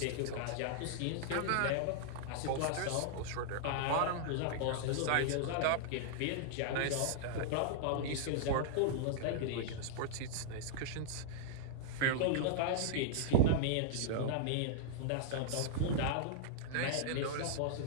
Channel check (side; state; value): both; different; correlation -0.01